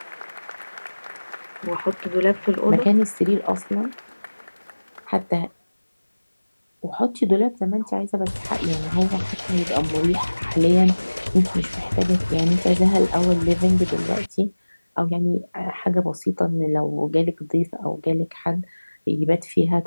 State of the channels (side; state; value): both; inverted; correlation -1.00